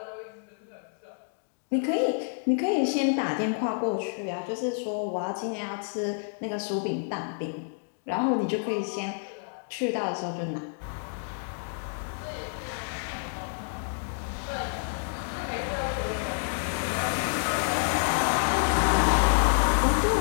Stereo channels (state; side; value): silent; right; digital silence